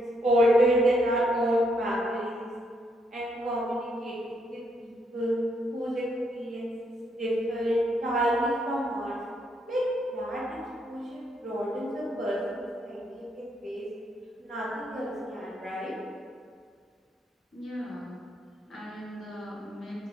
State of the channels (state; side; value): normal; both; correlation 0.75